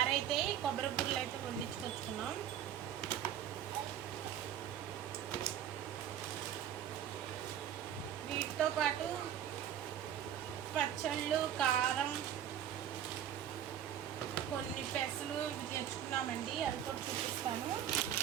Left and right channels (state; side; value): quieter; left; 10.3 dB